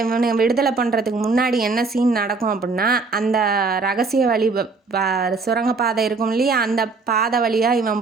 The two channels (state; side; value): quieter; left; 4.1 dB